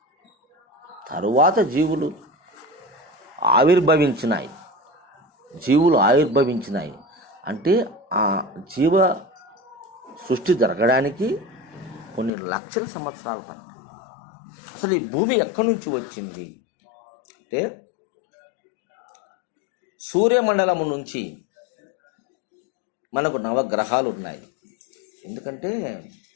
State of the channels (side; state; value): right; drops out; at 12.3 s